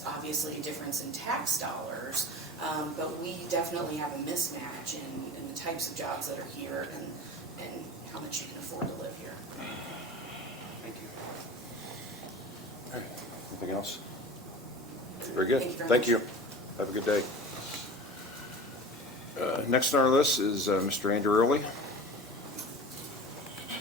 obviously a difference in tax dollars, but we definitely have a mismatch in the types of jobs that are here and how much you can afford to live here. Thank you. Anything else? Very good. Thank you very much. Thank you. Have a good day. Next on our list is Mr. Andrew Early.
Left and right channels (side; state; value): both; normal; correlation 0.36